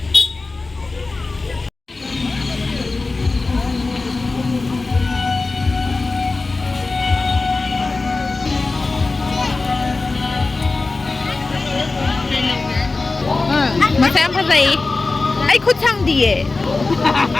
mà xem cái gì ấy khúc sang đi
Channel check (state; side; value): quieter; right; 3.6 dB